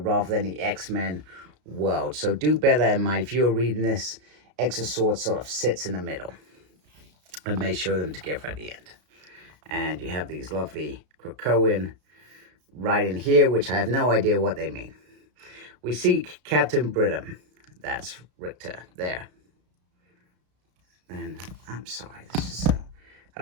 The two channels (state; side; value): late; left; 33 ms